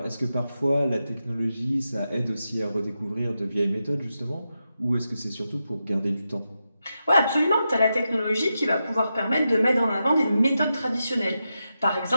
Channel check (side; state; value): both; inverted; correlation -0.88